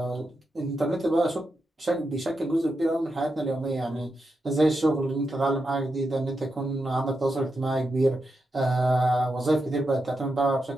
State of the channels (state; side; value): normal; both; correlation 0.87